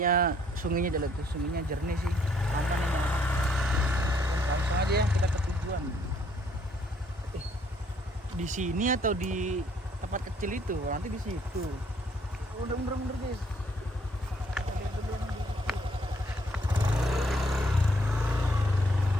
sungainya jernih sih. Aman ini. Langsung aja ya kita ke tujuan. Di sini atau di tempat kecil itu? Nanti di situ. Udah mundur guys.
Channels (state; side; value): normal; both; correlation 0.66